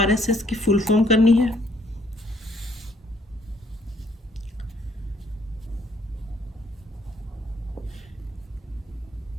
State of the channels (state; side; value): normal; both; correlation 0.66